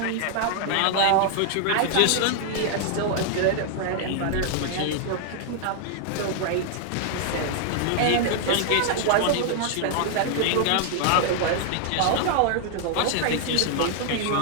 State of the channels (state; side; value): different; both; correlation 0.00